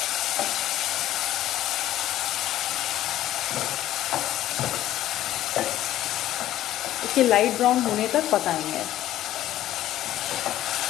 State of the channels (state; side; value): quieter; right; 13.4 dB